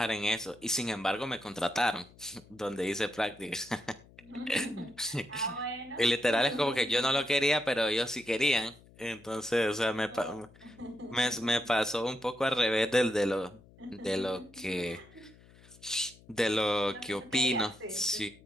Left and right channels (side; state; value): left; noise; hum, 25 dB below the sound